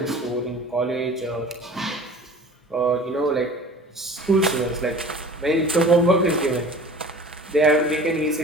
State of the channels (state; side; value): normal; both; correlation 0.43